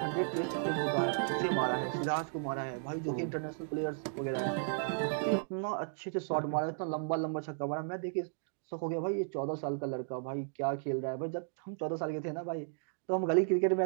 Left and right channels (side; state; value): left; silent; digital silence